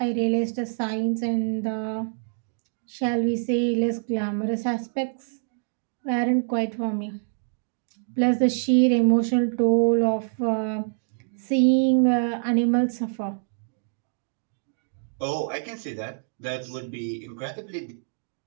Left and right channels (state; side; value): silent; left; digital silence